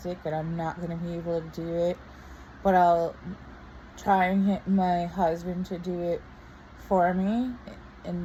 and I'm not going to be able to do it. But I'll try and get my husband to do it for me.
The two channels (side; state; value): both; identical; correlation 1.00